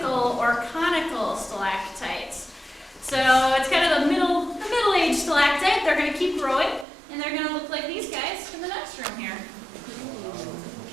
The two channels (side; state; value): left; drops out; at 6.9 s